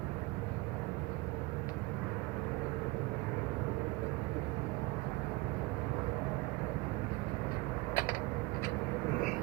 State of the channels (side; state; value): left; quieter; 20.9 dB